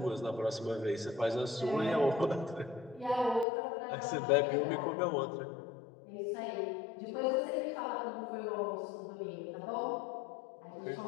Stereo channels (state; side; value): drops out; right; at 3.5 s